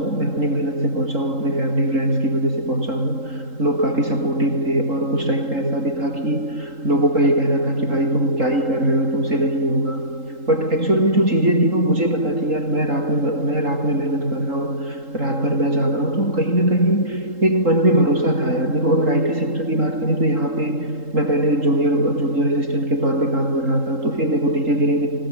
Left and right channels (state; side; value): late; left; 3.8 ms